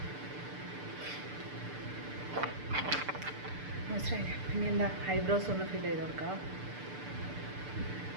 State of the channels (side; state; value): left; late; 6.8 ms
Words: മോയ്സ്ചറൈസർ പിന്നെ എന്താ ഐബ്രോസ് ഒന്ന് ഫില്ല് ചെയ്ത് കൊടുക്കാം.